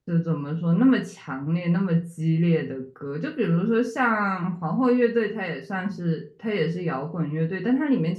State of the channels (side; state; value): both; identical; correlation 1.00